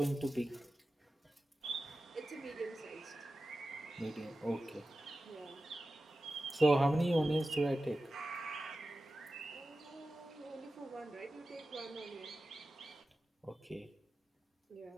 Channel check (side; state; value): both; normal; correlation 0.94